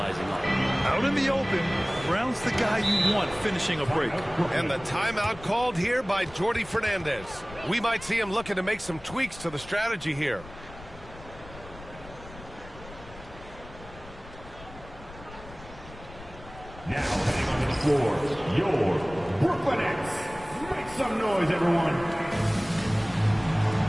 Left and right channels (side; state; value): left; noise; rumble, 17 dB below the sound